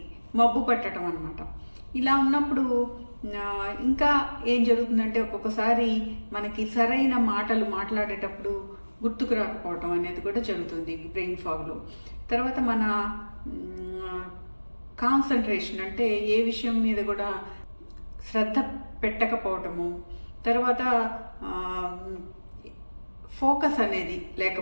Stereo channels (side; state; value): both; inverted; correlation -1.00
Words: మబ్బు పట్టడం అనమాట. ఇలా ఉన్నప్పుడు ఇంకా ఏం జరుగుతుందంటే ఒక్కొక్కసారి మనకి సరైన మాటలు మాట్లాడేటప్పుడు గుర్తుకు రాకపోవటం అనేది కూడా జరుగుతుంది బ్రెయిన్ ఫాగ్లో. తర్వాత మన కాన్సన్ట్రేషన్ అంటే ఏ విషయం మీద కూడా శ్రద్ధ పెట్టకపోవటము, తర్వాత ఫోకస్ అనేది